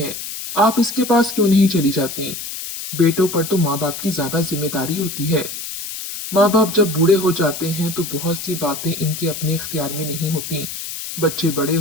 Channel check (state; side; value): noise; left; hiss, 8 dB below the sound